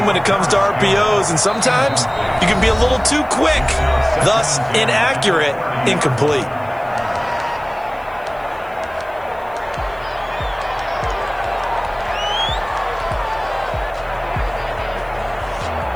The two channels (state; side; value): noise; left; hiss, 30 dB below the sound